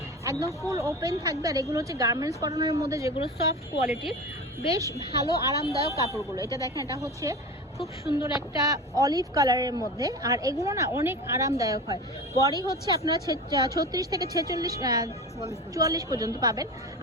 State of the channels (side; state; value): both; normal; correlation 0.30